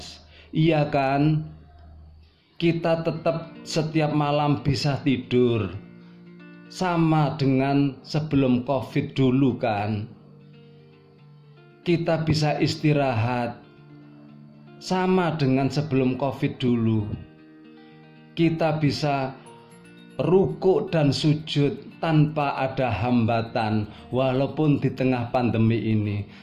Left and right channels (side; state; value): both; identical; correlation 1.00